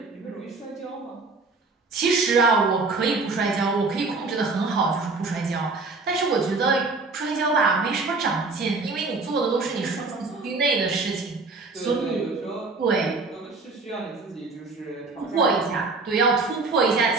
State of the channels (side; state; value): left; quieter; 3.8 dB